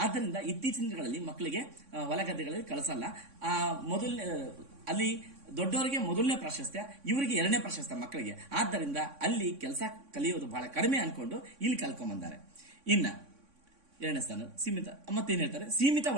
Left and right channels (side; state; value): left; late; 3.6 ms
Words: ಆದ್ದರಿಂದ ಇತ್ತೀಚಿನ ದಿನಗಳಲ್ಲಿ ಮಕ್ಕಳಿಗೆ ಹೊಲ ಗದ್ದೆಗಳಲ್ಲಿ ಕಳಿಸಲ್ಲ. ಅಲ್ಲಿ ದೊಡ್ಡವರಿಗೆ ಮೊದಲನೇ ಪ್ರಾಶಸ್ತ್ಯ, ಇವರಿಗೆ ಎರಡನೇ ಪ್ರಾಶಸ್ತ್ಯ ಮಕ್ಕಳಿಗೆ. ಆದ್ದರಿಂದ ಅಲ್ಲಿ ಕೆಲಸ ಕಲಿಯೋದು ಬಹಳ ಕಡಿಮೆ ಅನ್ಕೊಂಡು ಇಲ್ಲಿ ಕಲ್ಕೊಂಡ್ಬಂದಾರೆ. ಇನ್ನ ಎರಡನೇ ಸ್ಥಾನ ಸೀಮಿತ. ಮತ್ತೇನ್ ಹೇಳ್ತಾರೆ, ಸೀಮಿತ